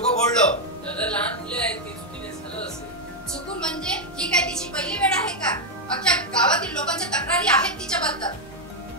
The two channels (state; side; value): normal; both; correlation 0.01